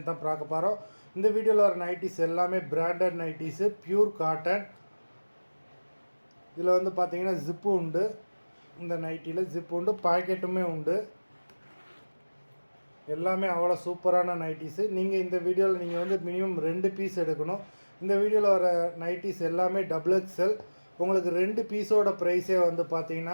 தான் பார்க்க போகிறோம். இந்த வீடியோவில் வர நைட்டிஸ் எல்லாமே பிராண்டட் நைட்டிஸு, பியூர் காட்டன். இதில் பார்த்தீங்கன்னா ஜிப்பு உண்டு. இந்த நைட்டியில் ஜிப்பு உண்டு, பாக்கெட்டுமே உண்டு. எல்லாமே அவ்வளோ சூப்பரான நைட்டிஸு. நீங்கள் இந்த வீடியோவில் நீங்கள் மினிமம் 2 பீஸ் எடுக்கணும். இந்த வீடியோவில் வர நைட்டிஸ் எல்லாமே டபுள் எக்ஸ்எல். உங்களுக்கு 2 பீஸோட ப்ரைஸே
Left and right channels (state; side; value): inverted; both; correlation -1.00